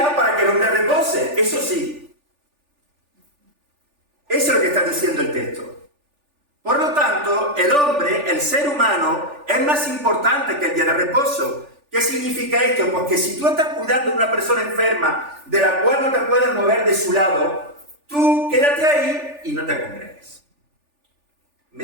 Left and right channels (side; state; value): left; late; 3.4 ms